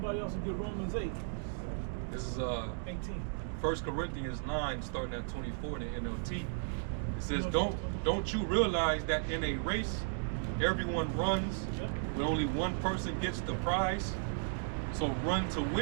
else will get Romans 8. This is 18. 1 Corinthians 9, starting at 24 in the NLT. It says, don't you realize that in a race, everyone runs, but only one person gets the prize? So run to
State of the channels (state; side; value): silent; left; digital silence